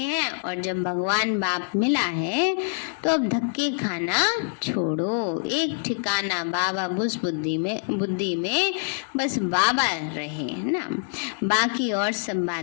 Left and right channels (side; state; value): right; silent; digital silence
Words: और जब भगवान बाप मिला है तो अब धक्के खाना छोड़ो, एक ठिकाना बाबा बुस बुद्धि में बस बाबा रहे ना, बाकी और सब